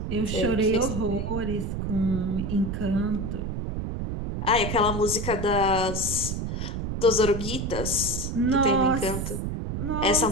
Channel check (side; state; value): right; noise; rumble, 3 dB below the sound